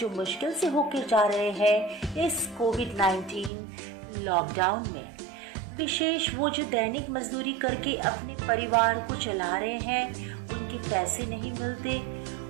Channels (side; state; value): left; drops out; at 3.5 s